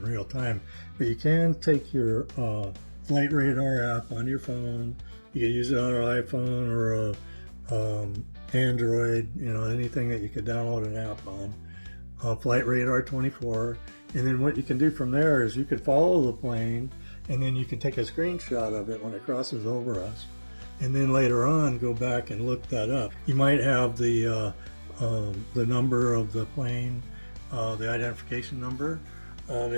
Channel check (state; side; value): inverted; both; correlation -1.00